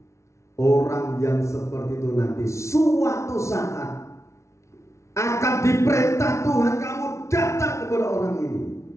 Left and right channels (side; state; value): right; late; 0.13 ms